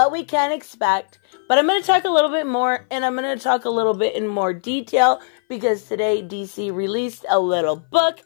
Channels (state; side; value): silent; right; 59 dB below the other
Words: we can expect, but I'm going to talk a little bit more, and I'm going to talk a little bit in more detail because today DC released a little book.